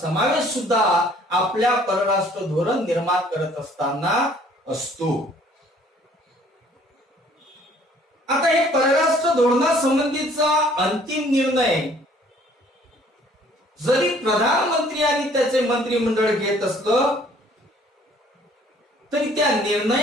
सुद्धा आपल्या परराष्ट्र धोरण निर्माण करत असताना असतो. आता हे परराष्ट्र धोरणासंबंधीचा अंतिम निर्णय जरी प्रधानमंत्री आणि त्याचे मंत्रिमंडळ घेत असलं तरी त्या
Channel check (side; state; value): both; normal; correlation 0.58